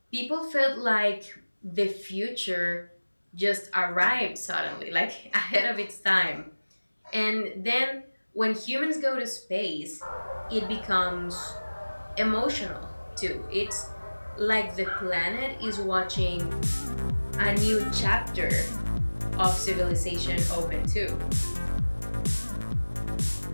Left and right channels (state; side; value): inverted; both; correlation -1.00